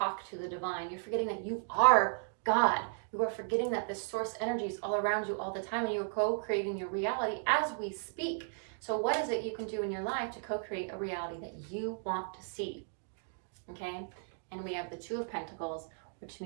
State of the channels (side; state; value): left; silent; digital silence